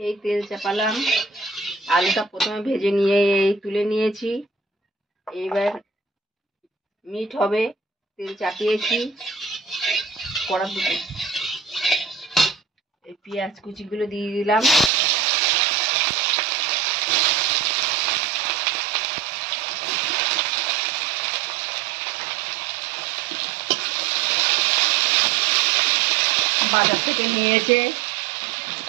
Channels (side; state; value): left; drops out; at 14.9 s